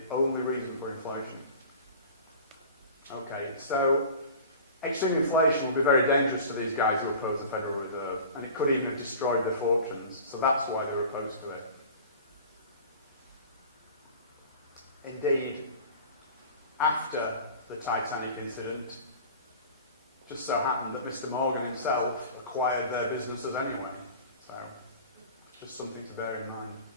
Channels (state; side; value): inverted; both; correlation -0.40